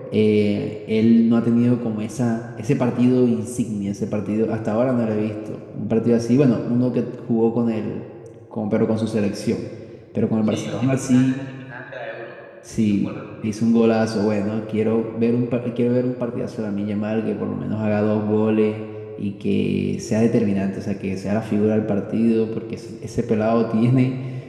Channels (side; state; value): both; identical; correlation 1.00